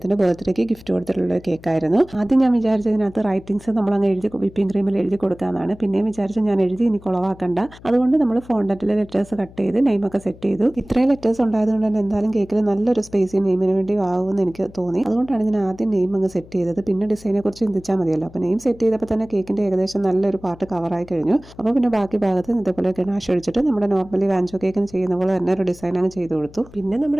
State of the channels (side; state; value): left; noise; hum, 21 dB below the sound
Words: ബർത്ത്ഡേക്ക് ഗിഫ്റ്റ് കൊടുത്തിട്ടുള്ള ഒരു കേക്കായിരുന്നു. ആദ്യം ഞാൻ വിചാരിച്ചതിനകത്ത് റൈറ്റിംഗ്സ് നമ്മൾ അങ്ങ് എഴുതി വിപ്പിംഗ് ക്രീമിൽ എഴുതി കൊടുക്കാനാണ്. പിന്നെയും വിചാരിച്ചു ഞാൻ എഴുതി ഇനി കുളവാക്കണ്ട, അതുകൊണ്ട് നമ്മൾ ഫോണ്ടന്റിലെ ലെറ്റേഴ്സ് കട്ട് ചെയ്ത് നെയിമൊക്കെ സെറ്റ് ചെയ്തു. ഇത്രയും ലെറ്റേഴ്സ് ഉണ്ടായതുകൊണ്ട് തന്നെ എന്തായാലും കേക്കിൽ നല്ലൊരു സ്പേസ് നെയിമിന് വേണ്ടി ആവുമെന്ന് എനിക്ക് തോന്നി. അതുകൊണ്ടാണ് ഞാൻ ആദ്യം നെയിം അങ്ങ് സെറ്റ് ചെയ്തത്. പിന്നെ ഡിസൈനെ കുറിച്ച് ചിന്തിച്ചാൽ മതിയല്ലോ. അപ്പോൾ നെയിം സെറ്റ് ചെയ്തപ്പോൾ തന്നെ കേക്കിന്റെ ഏകദേശം നല്ലൊരു പാർട്ട് കവറായി കഴിഞ്ഞു. അപ്പോൾ പിന്നെ ബാക്കി ഭാഗത്ത് ഇതേപോലെ ഗണാഷ് ഒഴിച്ചിട്ട് നമ്മുടെ നോർമലി വാഞ്ചോ കേക്കിന് ചെയ്യുന്ന പോലെ തന്നെ ഒരു ഡിസൈൻ അങ്ങ് ചെയ്ത് കൊടുത്തു. പിന്നെ